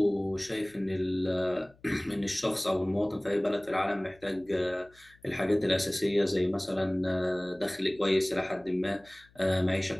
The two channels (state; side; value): noise; left; hum, 29 dB below the sound